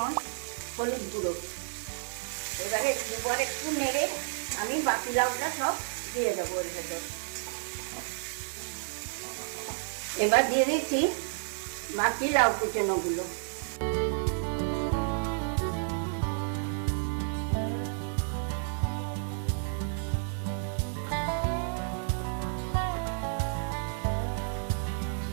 হলুদ গুঁড়ো। এবারে দুবার একটু নেড়ে আমি বাকি লাউটা সব দিয়ে দেবো এর ভেতর। এবার দিয়ে দিচ্ছি বাকি লাউ কুচানোগুলো।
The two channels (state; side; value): silent; left; 57 dB below the other